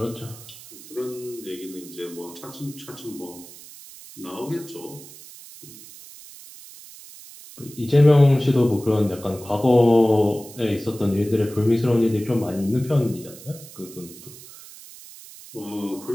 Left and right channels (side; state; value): right; noise; hiss, 18 dB below the sound